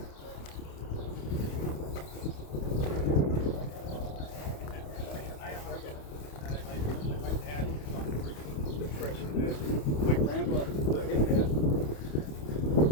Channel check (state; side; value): late; right; 28 ms